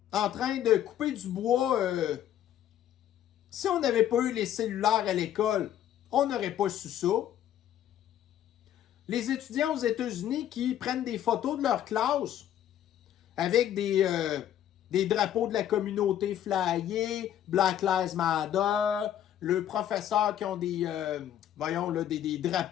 en train de couper du bois. Si on n'avait pas eu les cellulaires à l'école, on n'aurait pas su ça. Les étudiants aux États-Unis qui prennent des photos de leur classe avec des drapeaux de la communauté flyée, Black Lives Matter, le professeur qui ont des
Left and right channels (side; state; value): right; quieter; 11.0 dB